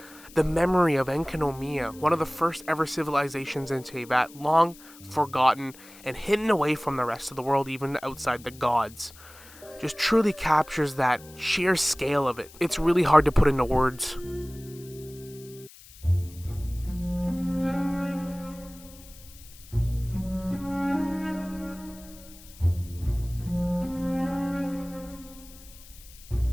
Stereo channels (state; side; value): noise; left; hiss, 21 dB below the sound